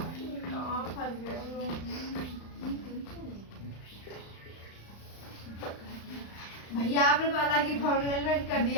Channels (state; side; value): late; right; 35 ms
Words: कहाँ फंस गए हो? भैया आपने तो अलग ही फॉर्मूला कर